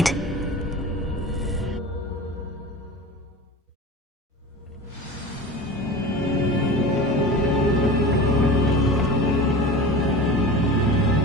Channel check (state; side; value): normal; both; correlation 0.34